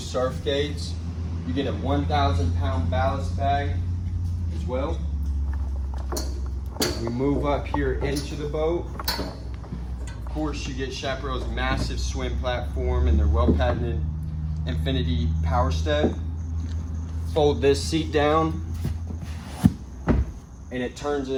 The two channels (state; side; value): identical; both; correlation 1.00